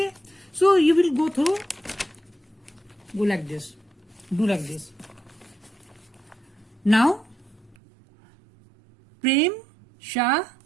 so you will go through, go like this, do like this. Now Prem Shah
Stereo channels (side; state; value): left; drops out; at 7.8 s